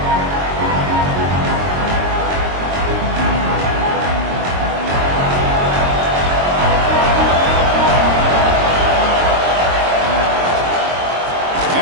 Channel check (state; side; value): late; left; 22 ms